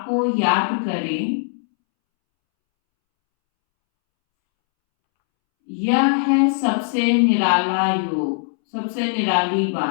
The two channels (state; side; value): silent; right; 66 dB below the other